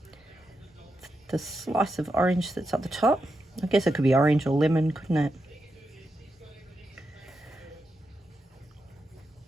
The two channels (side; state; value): both; normal; correlation 0.86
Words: the slice of orange that's at the top. I guess it could be orange or lemon, couldn't it?